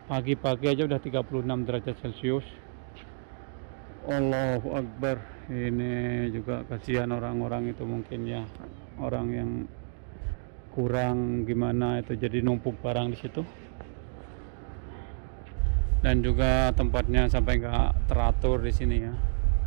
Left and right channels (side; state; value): left; silent; digital silence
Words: Pagi-pagi aja udah 36 derajat Celcius. Allahu Akbar. Ini juga kasihan orang-orang itu mungkin ya, orang yang kurang gimana itu, jadi numpuk barang di situ. Dan juga tempatnya sampai nggak teratur di sini ya.